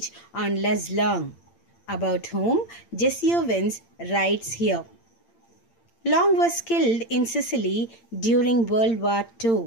on Les Long, about whom Jesse Owens writes here. Long was killed in Sicily during World War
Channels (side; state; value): right; late; 8.8 ms